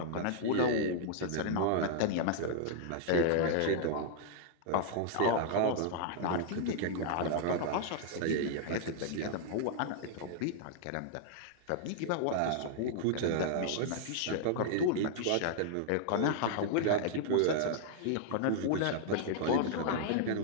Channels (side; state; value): both; different; correlation -0.01